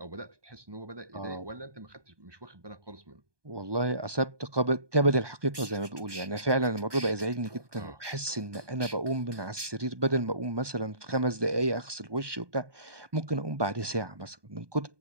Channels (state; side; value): late; left; 1.2 ms